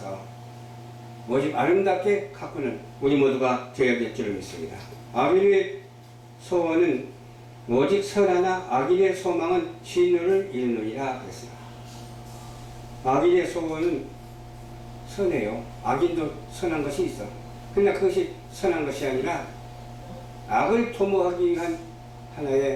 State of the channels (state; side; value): identical; both; correlation 1.00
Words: 오직 아름답게 가꾸는 우리 모두가 되어야 될 줄을 믿습니다. 아벨의 소원은 오직 선하나 악인의 소망은 진노를 이루느니라 그랬습니다. 악인의 소원은 선해요. 악인도 선한 것이 있어. 그러나 그것이 선한 것이 아니라 악을 도모하기 위한